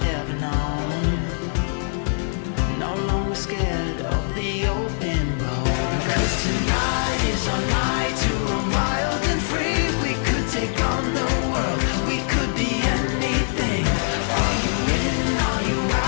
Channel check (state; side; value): silent; right; digital silence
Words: ever known. No longer scared of the open road. 'Cause tonight is our night to run wild and free. We could take on the world, we could be anything. Are you in, are you